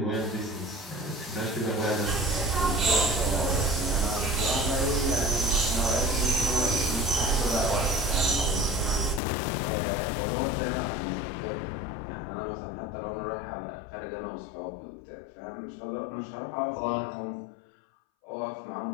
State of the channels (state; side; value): drops out; right; at 9.2 s